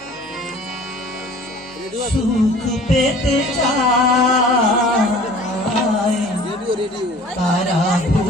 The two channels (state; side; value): normal; both; correlation 0.47